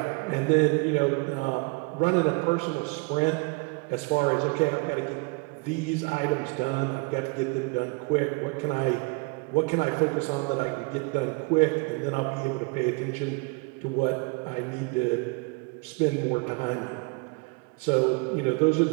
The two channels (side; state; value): left; quieter; 28.8 dB